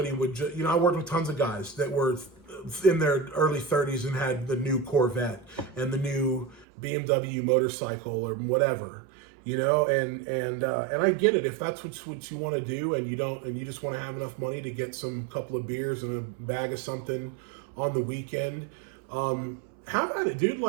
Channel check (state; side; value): drops out; left; at 6.7 s